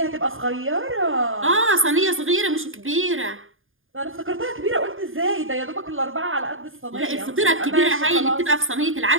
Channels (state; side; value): late; left; 0.59 ms